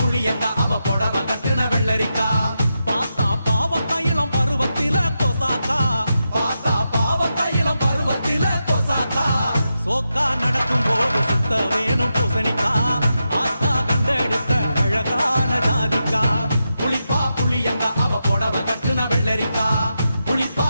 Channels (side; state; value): both; inverted; correlation -0.87